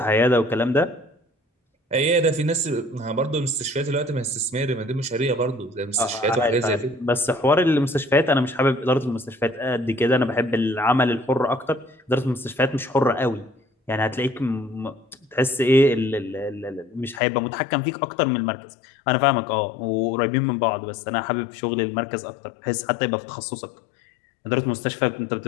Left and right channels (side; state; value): right; drops out; at 17.2 s